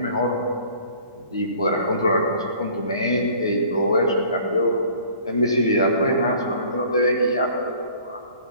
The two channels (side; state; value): both; inverted; correlation -0.52